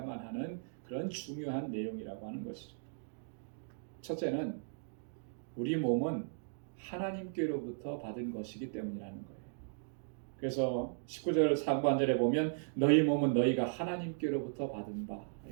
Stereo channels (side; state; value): left; silent; digital silence